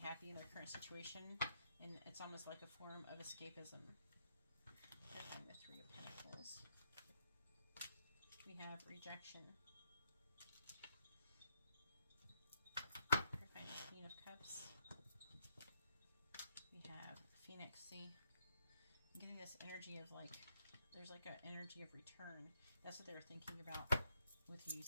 in their current situation, and it's almost like a form of escapism. Clarifying the Three of Pentacles. We have rejection. Clarifying the Queen of Cups. We have Phoenix. See, I'm getting this energy of like, there's like an energy of return. That's what they were thinking about with you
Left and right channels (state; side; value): inverted; both; correlation -0.76